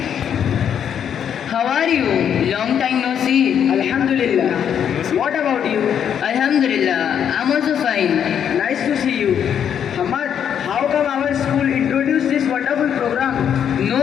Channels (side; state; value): right; quieter; 8.6 dB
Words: How are you? Long time no see. Alhamdulillah. What about you? Alhamdulillah, I'm also fine. Nice to see you. Hamad, how come our school introduced this wonderful program?